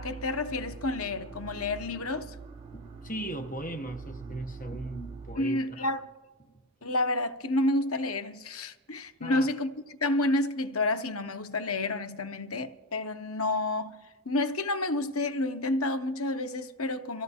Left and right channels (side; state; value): both; normal; correlation 0.16